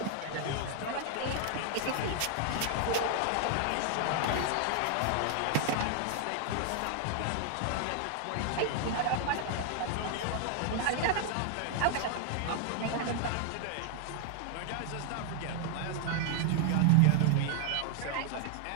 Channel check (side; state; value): both; different; correlation 0.00